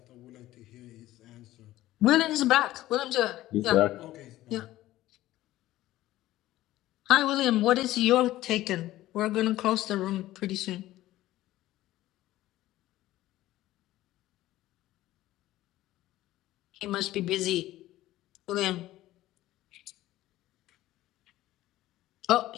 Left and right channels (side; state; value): right; quieter; 15.5 dB